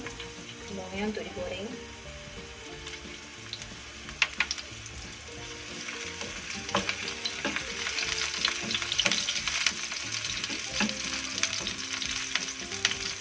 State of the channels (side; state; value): both; identical; correlation 1.00